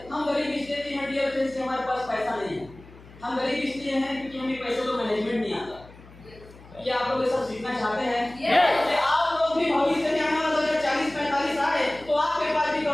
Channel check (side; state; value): left; noise; hum, 21 dB below the sound